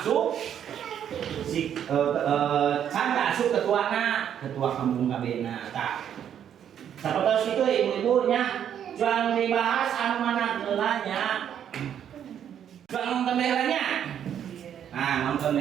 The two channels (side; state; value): left; quieter; 9.3 dB